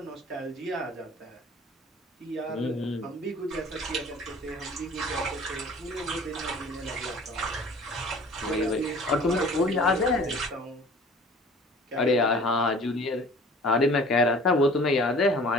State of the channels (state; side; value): normal; both; correlation 0.47